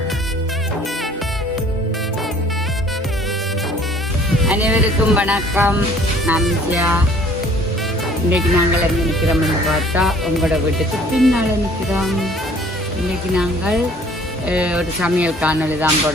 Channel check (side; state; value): both; normal; correlation 0.55